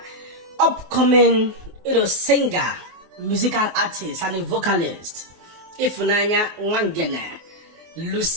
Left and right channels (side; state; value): left; late; 23 ms